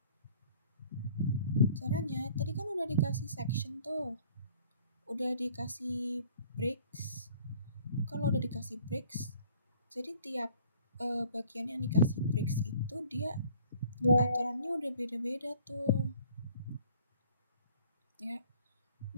Caranya, tadi kan udah dikasih section tuh. Udah dikasih breaks. Kalau udah dikasih breaks, jadi tiap bagian yang dikasih breaks itu dia aturannya udah beda-beda tuh. Ya,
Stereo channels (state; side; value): inverted; both; correlation -0.54